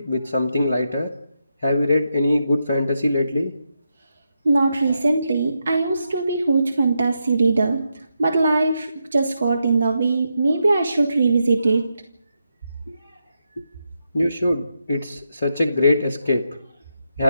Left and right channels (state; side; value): inverted; both; correlation -0.84